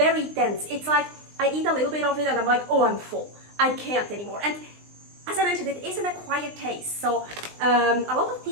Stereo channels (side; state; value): left; late; 20 ms